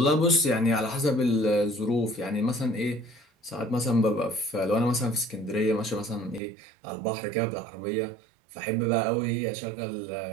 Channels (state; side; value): drops out; left; at 6.4 s